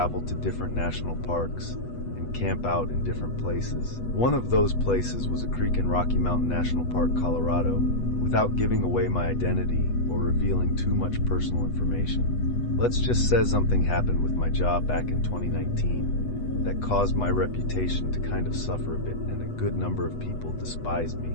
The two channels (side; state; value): right; late; 8.2 ms